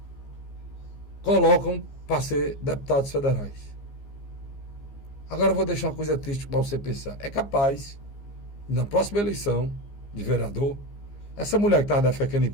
colocam para ser deputados federais. Agora eu vou deixar uma coisa triste para você pensar. É capaz, na próxima eleição de vereador, essa mulher que estava defecando em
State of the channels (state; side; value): late; right; 15 ms